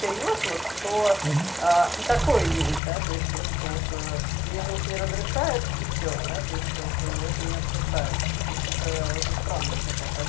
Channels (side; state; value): right; drops out; at 2.8 s